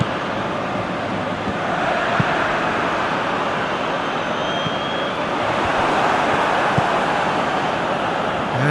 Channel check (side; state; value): both; identical; correlation 1.00